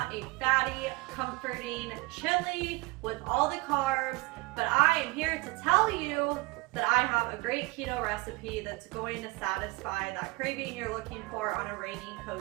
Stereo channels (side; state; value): left; quieter; 23.6 dB